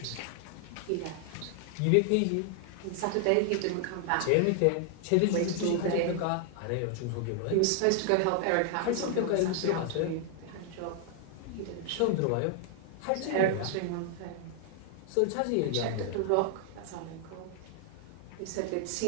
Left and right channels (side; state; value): both; different; correlation 0.00